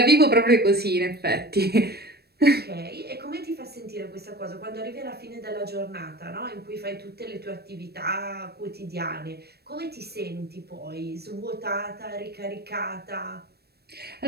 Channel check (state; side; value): late; left; 0.47 ms